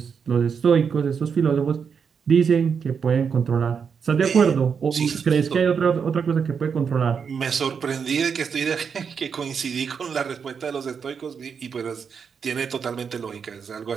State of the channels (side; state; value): left; quieter; 6.5 dB